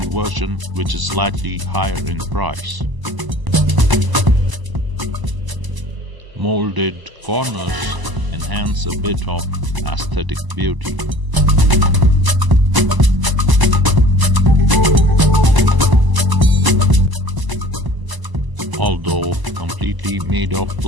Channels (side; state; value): left; late; 1.0 ms